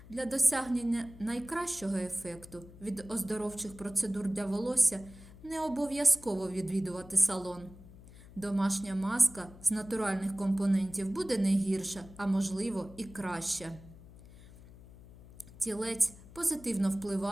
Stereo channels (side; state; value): left; noise; hum, 19 dB below the sound